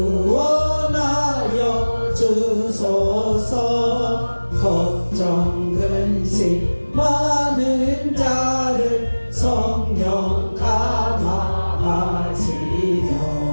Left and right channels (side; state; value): both; inverted; correlation -1.00